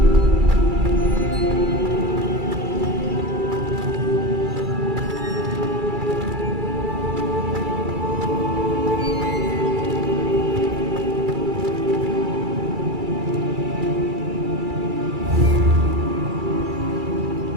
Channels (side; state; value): left; late; 2.3 ms